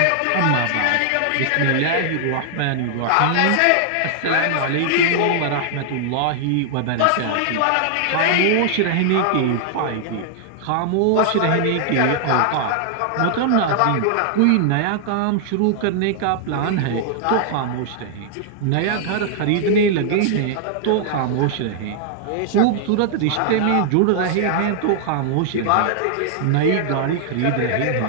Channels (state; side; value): different; both; correlation 0.00